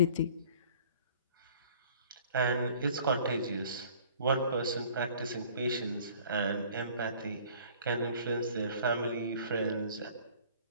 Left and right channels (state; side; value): inverted; both; correlation -0.51